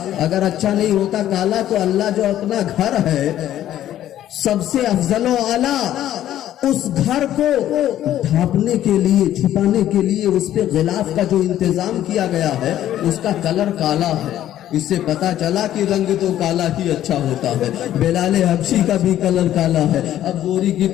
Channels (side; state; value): right; quieter; 12.2 dB